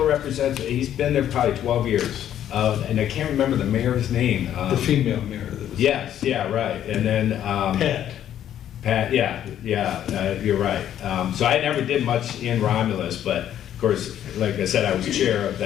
represents, he's been there probably 12 years. And I can't remember the mayor's name. The female mayor that was. Yes, yeah, right. And then. Pat, yeah, you're right. So I never did much in Romulus, but of course, like I said, I was chair of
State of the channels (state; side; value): quieter; right; 10.8 dB